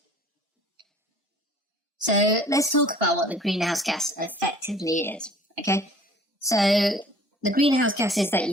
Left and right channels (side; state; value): both; normal; correlation 0.51